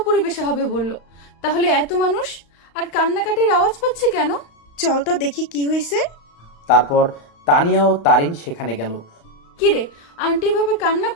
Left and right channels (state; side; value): late; right; 35 ms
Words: পরিবেশে হবে বললো, তাহলে এত মানুষ আর কান্নাকাটির আওয়াজ পাচ্ছি কেন? চল তো দেখি কি হয়েছে। তারপর তানিয়া ও তারিন সেখানে গেল। কিরে, আন্টি এভাবে কান্না